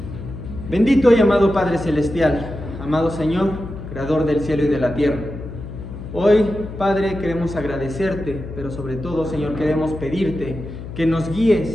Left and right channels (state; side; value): noise; left; hum, 10 dB below the sound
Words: Bendito y amado Padre Celestial, amado Señor, Creador del cielo y de la tierra. Hoy, Padre, queremos agradecerte, pero sobre todo, Señor, queremos pedirte que nos